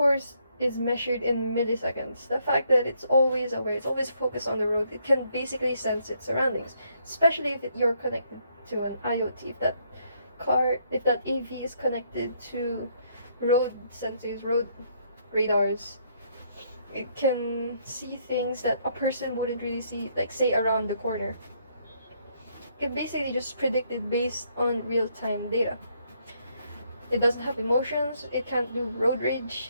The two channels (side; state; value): both; inverted; correlation -0.71